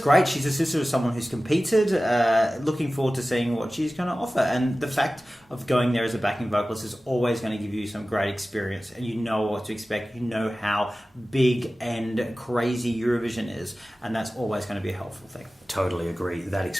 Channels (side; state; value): both; normal; correlation 0.96